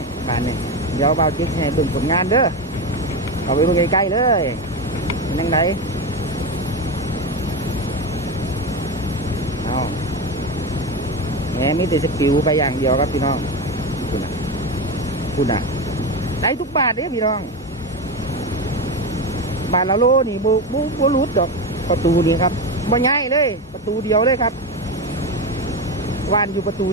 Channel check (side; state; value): both; normal; correlation 0.17